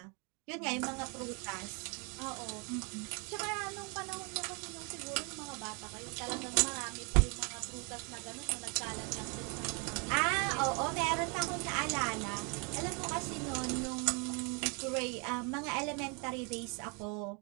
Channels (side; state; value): left; quieter; 34.1 dB